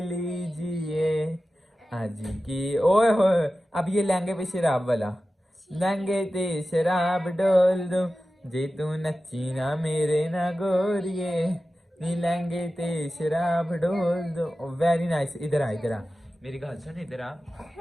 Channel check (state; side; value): normal; both; correlation 0.94